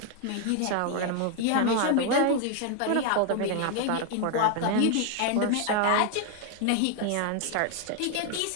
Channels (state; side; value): different; both; correlation 0.01